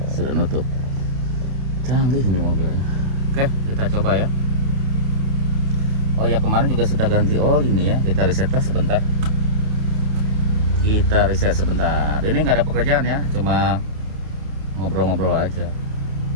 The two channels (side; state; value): left; late; 29 ms